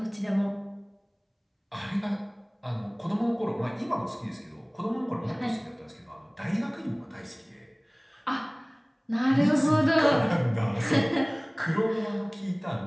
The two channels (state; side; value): identical; both; correlation 1.00